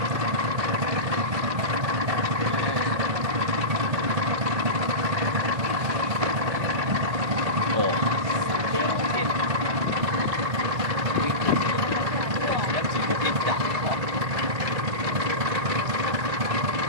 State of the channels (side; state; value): left; late; 1.6 ms